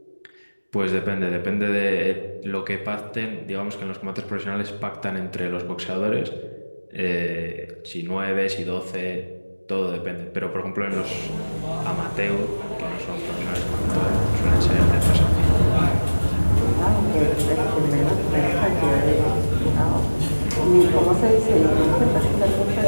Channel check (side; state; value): both; inverted; correlation -1.00